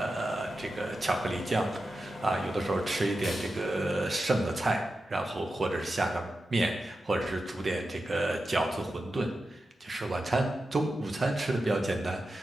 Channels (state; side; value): normal; both; correlation 0.91